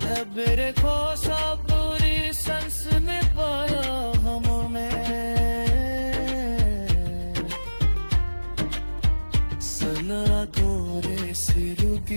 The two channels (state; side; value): inverted; both; correlation -1.00